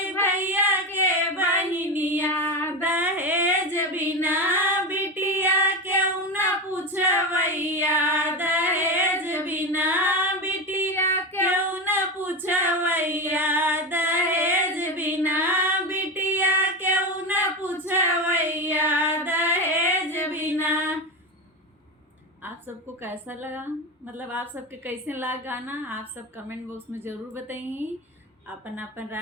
भैया के बहिनिया दहेज बिना। बिटिया क्यों न पूछवैया दहेज बिना, बिटिया क्यों न पूछवैया दहेज बिना, बिटिया क्यों न पूछवैया दहेज बिना। आप सबको कैसा लगा, मतलब आप सबके कैसे लगा गाना? आप सब कमेंट बॉक्स में ज़रूर बताइए। अपन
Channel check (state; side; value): normal; both; correlation 0.19